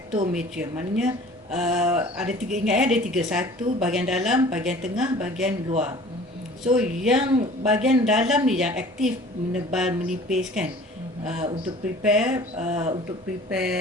Maknanya ada 3, ingat ya, ada 3. Satu bahagian dalam, bahagian tengah, bahagian luar. So yang bahagian dalam ni yang aktif, menebal, menipis kan, untuk prepare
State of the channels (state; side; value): normal; both; correlation 0.47